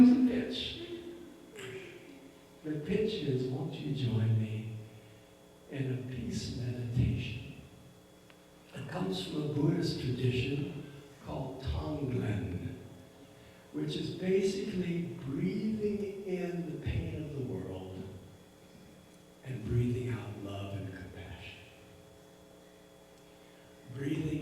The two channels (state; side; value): identical; both; correlation 1.00